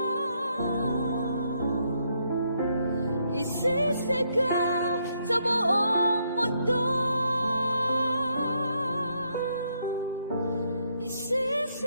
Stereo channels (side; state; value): both; inverted; correlation -0.75